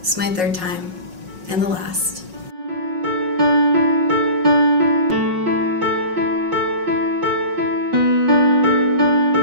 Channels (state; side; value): late; left; 5.5 ms